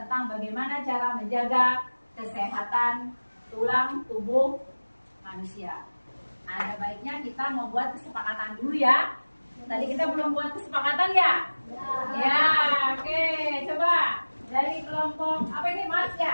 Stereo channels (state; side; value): inverted; both; correlation -1.00